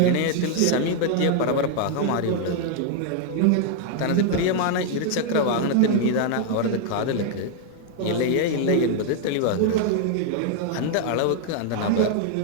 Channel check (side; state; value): both; different; correlation 0.00